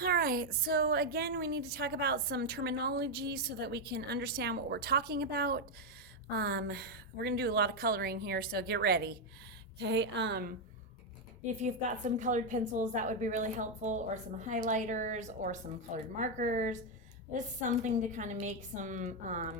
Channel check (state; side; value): normal; both; correlation 0.03